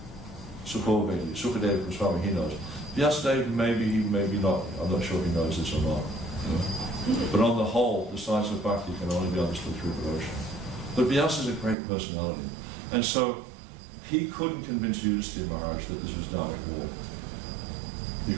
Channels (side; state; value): left; drops out; at 11.8 s